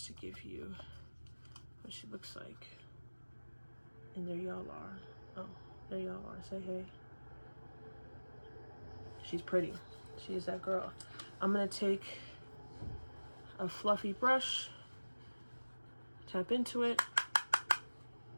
to give you what she looks like. And there y'all are. Oh, there y'all are. Say hey. She's pretty. She's that girl. I'm gonna take a fluffy brush, tap into it,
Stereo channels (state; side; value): inverted; both; correlation -1.00